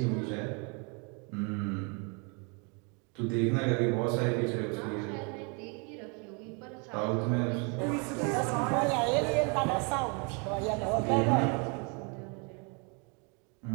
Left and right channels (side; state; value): left; quieter; 34.0 dB